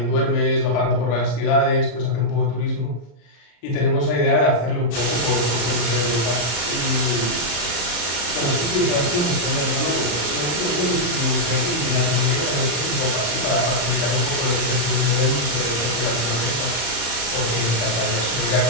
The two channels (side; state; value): right; late; 34 ms